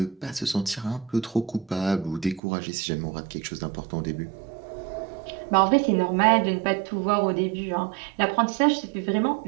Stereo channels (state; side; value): drops out; left; at 2.4 s